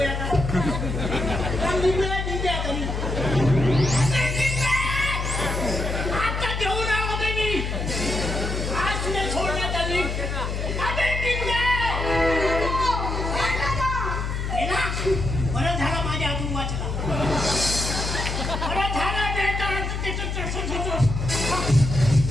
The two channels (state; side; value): noise; left; hum, 3 dB below the sound